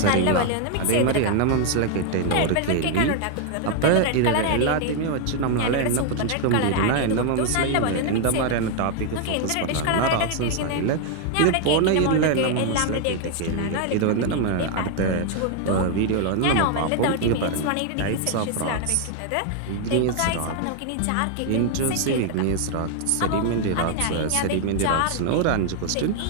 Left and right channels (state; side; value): different; both; correlation 0.00